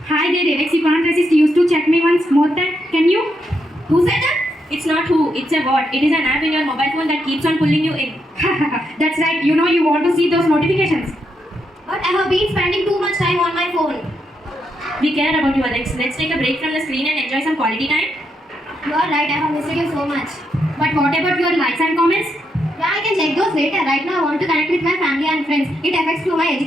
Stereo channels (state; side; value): normal; both; correlation 0.80